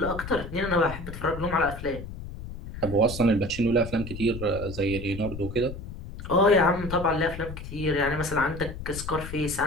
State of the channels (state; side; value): noise; left; rumble, 10 dB below the sound